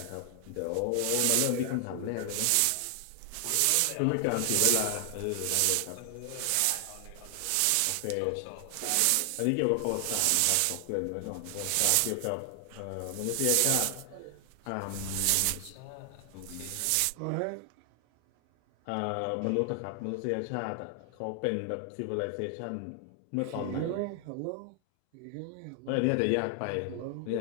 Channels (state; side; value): different; both; correlation 0.00